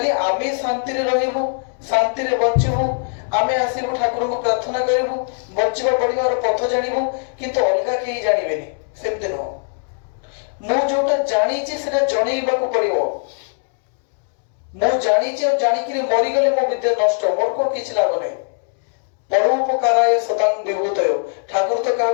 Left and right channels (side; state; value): right; silent; 66 dB below the other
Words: আমি শান্তিরে রহিবু, শান্তিরে বঞ্চিবু, আমি আসিবু ঠাকুরଙ୍କୁ প্রার্থনা করিবু, বঞ্চিবা পড়িবার পথ জানিবু, কিন্তু অলগা কেହି জানিবেনি, সেমতি নহ। ମୁଁ ଯୋଉଟା ଜାଣିଛି ସେଟା ଜଣେଇବାକୁ ପଡିବ। ମୁଁ ଜାଣିଛି ଆଉ ଜାଣିକିରି ମରିଗଲେ ମୋ ବିଦ୍ୟା ନଷ୍ଟ, ମୋର କଣ କିଛି ଲାଭ ନାହିଁ। ପରୋପକାରାୟ ସତାଂ ବିଭୂତୟ, ଠାକୁର ତ